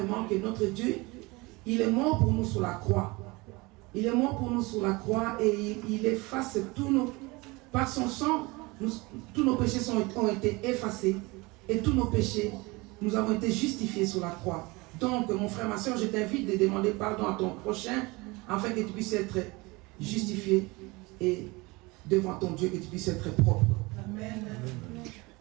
que notre Dieu, il est mort pour nous sur la croix. Il est mort pour nous sur la croix et il efface tous nos... Par son sang, tous nos péchés ont été effacés et tous nos péchés, nous avons été justifiés sur la croix. Donc, mon frère, ma soeur, je t'invite de demander pardon à ton prochain afin que tu puisses être justifié et devant ton Dieu, que tu puisses être propre. Amen.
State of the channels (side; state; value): left; quieter; 24.2 dB